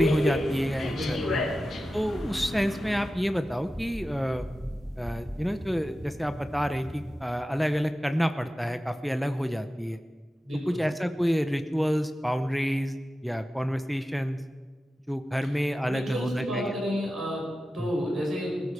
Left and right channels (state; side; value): normal; both; correlation 0.93